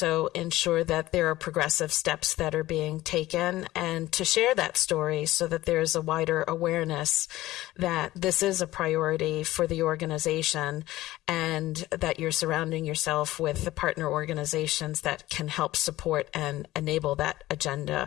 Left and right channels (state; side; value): quieter; right; 16.6 dB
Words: ensure that there are progressive steps that are being taken, and to share that story so that there's a wider awareness that this is a priority for the organization and that you're surrounding yourself with the partner organizations that can help support and enable that agenda